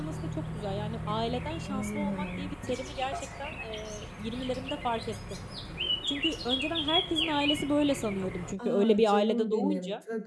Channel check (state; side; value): identical; both; correlation 1.00